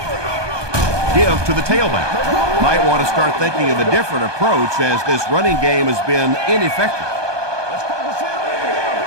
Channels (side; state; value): left; late; 1.2 ms